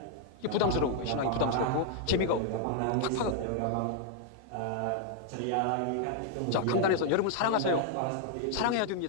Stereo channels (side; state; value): both; different; correlation 0.00